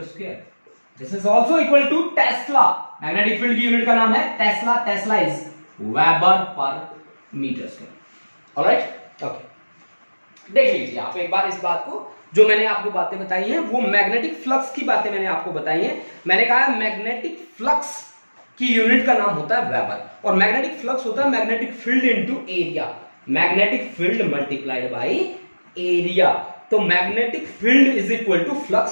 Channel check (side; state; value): both; inverted; correlation -1.00